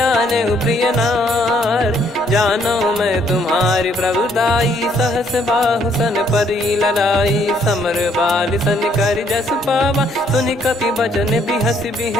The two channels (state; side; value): normal; both; correlation 0.67